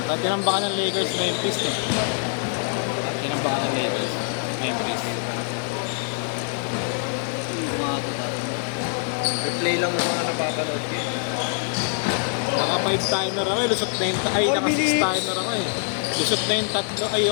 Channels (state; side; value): silent; right; 58 dB below the other